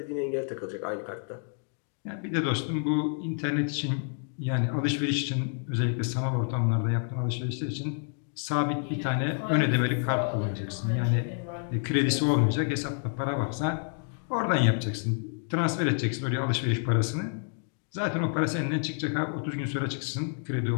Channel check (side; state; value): right; silent; 56 dB below the other